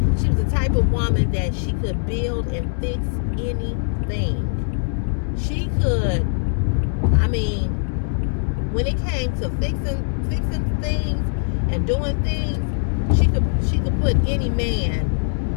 She was the type of woman that she could build and fix anything. She could, I mean, when it came to fixing things and doing things, she could put any man,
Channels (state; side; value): silent; right; 64 dB below the other